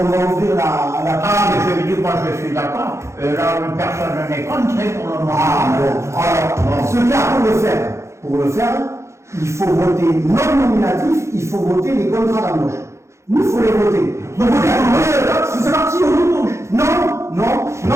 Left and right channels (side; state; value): left; late; 0.14 ms